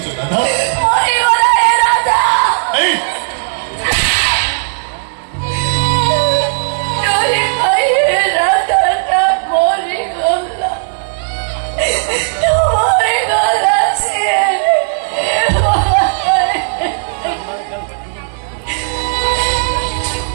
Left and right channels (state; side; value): silent; left; digital silence